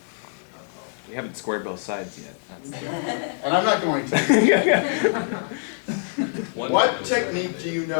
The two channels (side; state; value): right; silent; digital silence